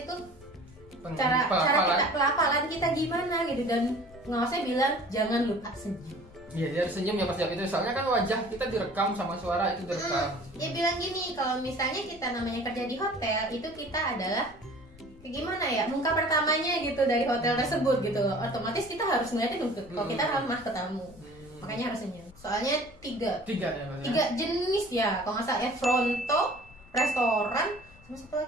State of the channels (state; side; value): noise; left; rumble, 23 dB below the sound